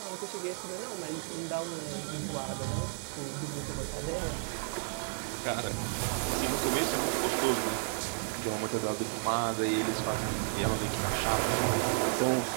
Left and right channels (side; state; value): left; silent; 56 dB below the other